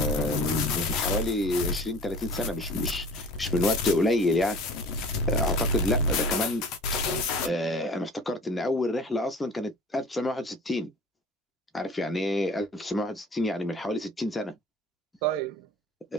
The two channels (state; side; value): normal; both; correlation 0.44